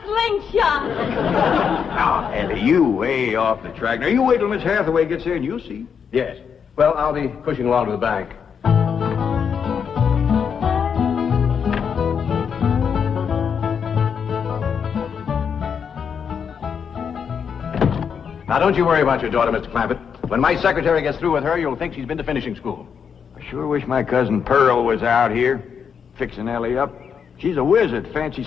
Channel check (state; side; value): quieter; right; 6.9 dB